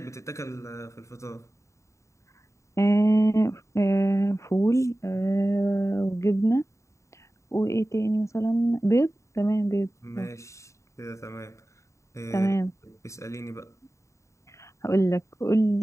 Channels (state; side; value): late; right; 0.14 ms